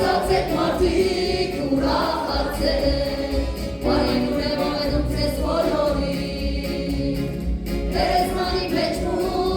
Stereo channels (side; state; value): both; identical; correlation 1.00